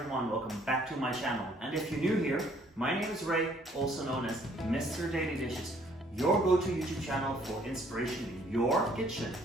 welcome back to my channel. And if you're new here, my name is Ray, also known as Mr. Daily Dishes, your go-to YouTube channel for inspiration in your kitchen.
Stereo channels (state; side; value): normal; both; correlation 0.62